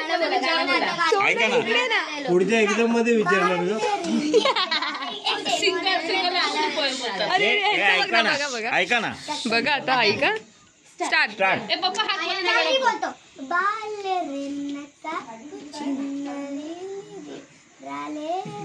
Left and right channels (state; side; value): identical; both; correlation 1.00